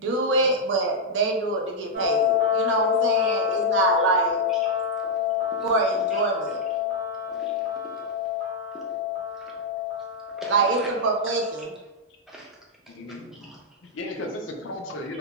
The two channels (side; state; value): both; normal; correlation -0.03